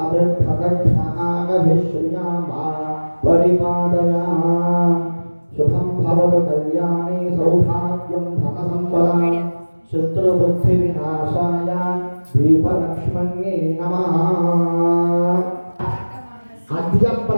अभिप्रदक्षिणागभिश्रियामा परिपादया शुभं भवतु कल्याणे सौभाग्यं धनसम्पदा शत्रुबुद्धिविनाशाय दीपलक्ष्मण्ये नमः। अद्य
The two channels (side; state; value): both; inverted; correlation -1.00